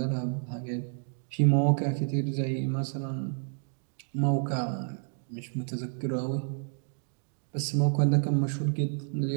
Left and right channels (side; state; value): left; silent; 58 dB below the other